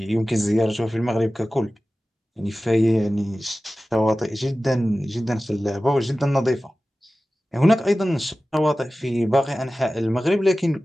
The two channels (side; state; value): both; normal; correlation 0.96